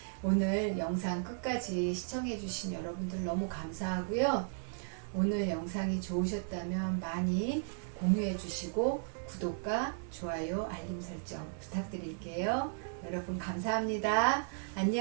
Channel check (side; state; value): left; silent; digital silence